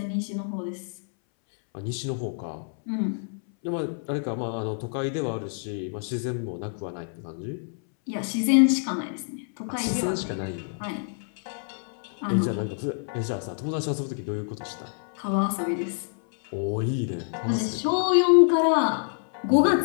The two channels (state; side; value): silent; right; 60 dB below the other